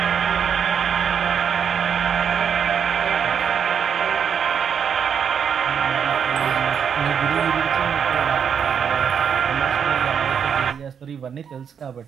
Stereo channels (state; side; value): quieter; left; 7.5 dB